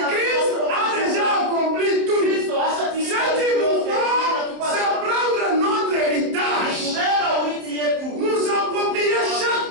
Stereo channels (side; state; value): left; late; 27 ms